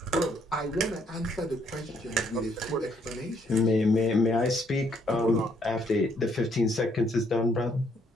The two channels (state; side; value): normal; both; correlation 0.69